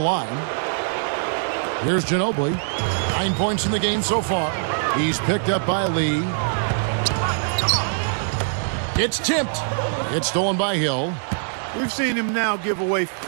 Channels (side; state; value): left; silent; digital silence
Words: Here's Ginobili. 9 points in the game so far. He's picked up by Lee. It's tipped. It's stolen by Hill. We've seen him now give away